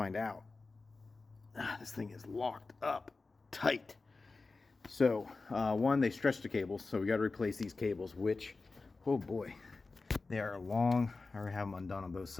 out, this thing is locked up tight. So, one, they stretched the cables, so we got to replace these cables, which, oh boy, they are long. I already have them undone on both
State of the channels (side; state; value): right; quieter; 3.8 dB